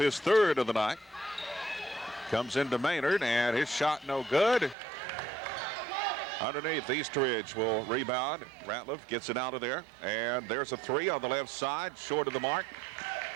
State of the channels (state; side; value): drops out; left; at 4.8 s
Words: third of the night. Comes into Maynard, and his shot no good. Underneath, Eastridge will rebound. Ratliff gets it out of there, and there's a three on the left side, short of the mark.